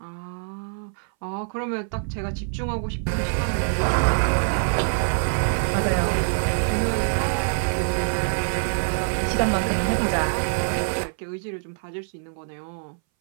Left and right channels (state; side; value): silent; left; 60 dB below the other